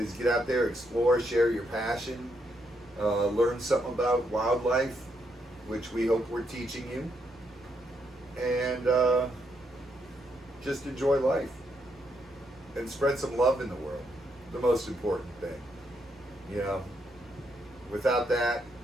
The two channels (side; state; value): both; normal; correlation 0.77